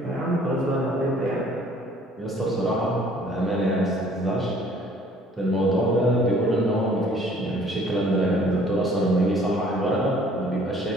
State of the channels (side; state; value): both; normal; correlation 0.56